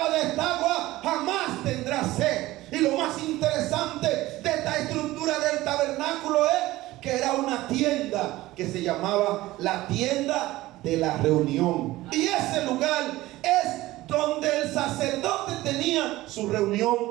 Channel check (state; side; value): quieter; left; 17.5 dB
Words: de esta agua jamás tendrá sed. Y lo más interesante de esta estructura del tabernáculo es que era una tienda que se llamaba la tienda de la reunión. Y ese lugar es donde el sacerdote tenía su